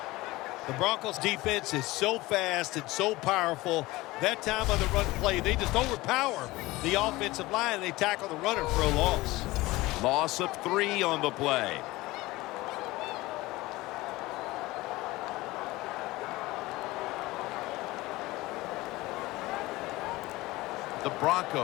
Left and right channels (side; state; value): right; quieter; 19.7 dB